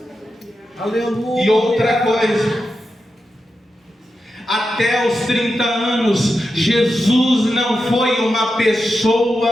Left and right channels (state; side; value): normal; both; correlation 0.89